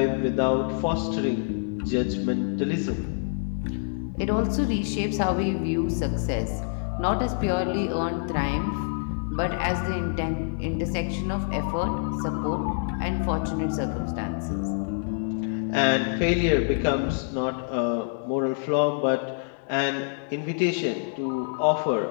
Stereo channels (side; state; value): right; silent; digital silence